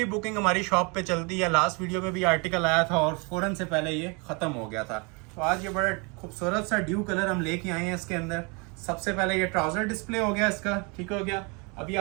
बुकिंग हमारी शॉप पे चलती है। लास्ट वीडियो में भी आर्टिकल आया था और फौरन से पहले ये खत्म हो गया था। तो आज ये बड़ा खूबसूरत सा ड्यू कलर हम लेके आए हैं इसके अंदर। सबसे पहले ये ट्राउजर डिस्प्ले हो गया इसका, ठीक हो गया। अभी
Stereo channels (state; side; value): quieter; left; 30.8 dB